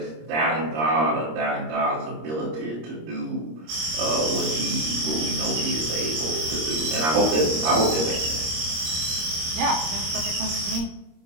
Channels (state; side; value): late; left; 26 ms